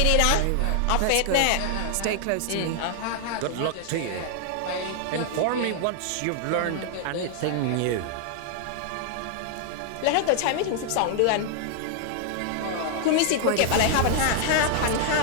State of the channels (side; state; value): both; different; correlation 0.00